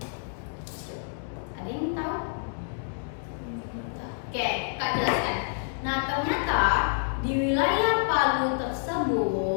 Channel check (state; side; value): silent; right; digital silence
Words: Ada yang tahu? Oke, Kak jelaskan. Nah, ternyata di wilayah Palu